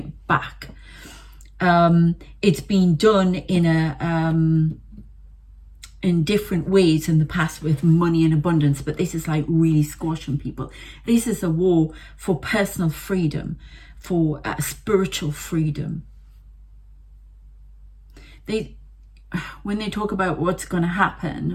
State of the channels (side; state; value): both; identical; correlation 1.00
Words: back. It's been done in different ways in the past with money and abundance, but this is like really squashing people. This is a war for personal freedom, for spiritual freedom. When they talk about what's going to